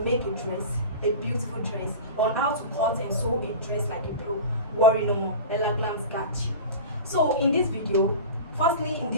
make a dress, a beautiful dress, on how to cut and sew a dress like a pro? Worry no more, Ella Glam's got you. So in this video, what we have in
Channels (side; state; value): both; inverted; correlation -0.31